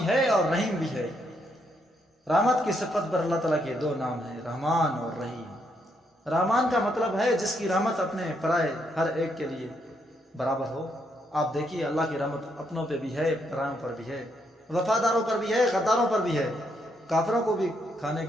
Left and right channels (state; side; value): normal; both; correlation 0.76